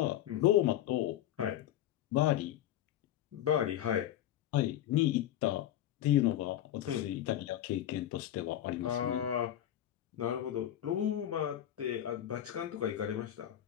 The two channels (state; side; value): quieter; right; 12.0 dB